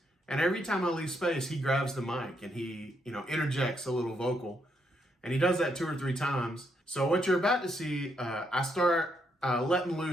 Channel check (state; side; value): normal; both; correlation 0.76